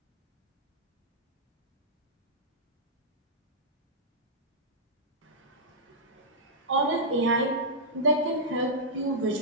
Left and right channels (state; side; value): normal; both; correlation -0.10